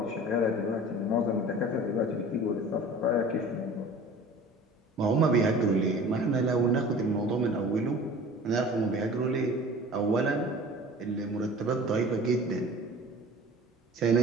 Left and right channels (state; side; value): normal; both; correlation 0.42